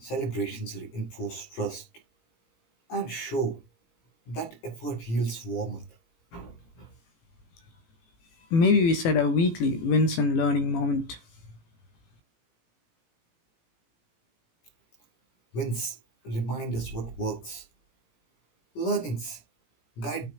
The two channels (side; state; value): right; late; 18 ms